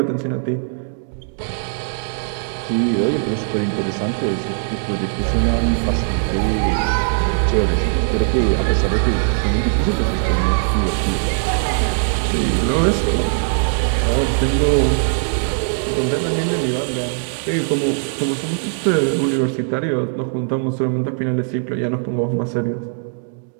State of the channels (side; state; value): left; silent; digital silence